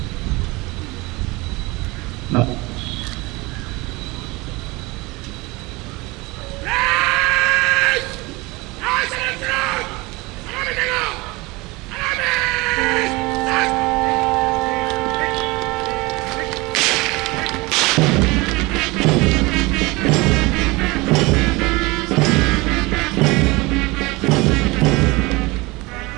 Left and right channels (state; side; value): quieter; left; 23.4 dB